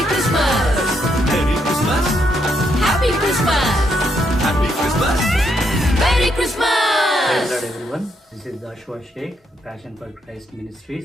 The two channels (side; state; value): both; normal; correlation 0.77